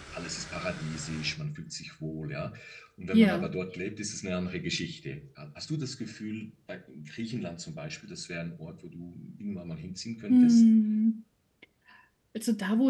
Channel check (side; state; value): both; identical; correlation 1.00